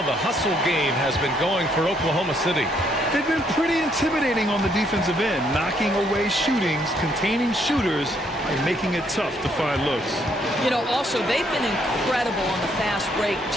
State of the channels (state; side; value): normal; both; correlation 0.70